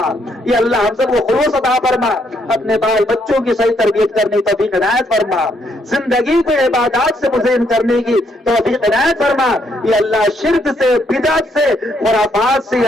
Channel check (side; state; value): both; normal; correlation 0.73